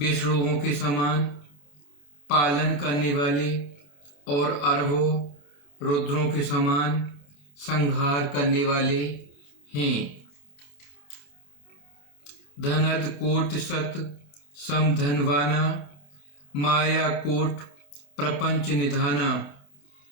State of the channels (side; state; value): right; late; 27 ms